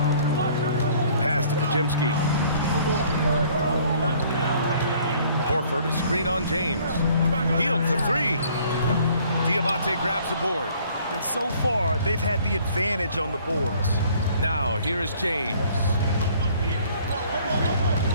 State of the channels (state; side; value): inverted; both; correlation -0.57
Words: Pass to Pajemski. Horford, a screen on James. Hield for 3. Diabate grabs the board. And so far, they've had the advantage on the boards. Now, here is James.